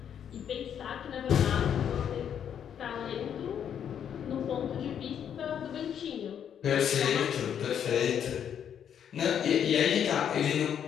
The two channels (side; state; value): right; quieter; 8.8 dB